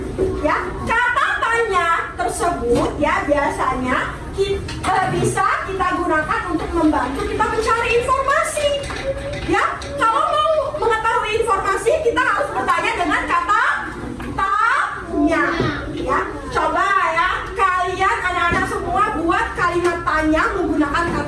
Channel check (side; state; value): both; identical; correlation 1.00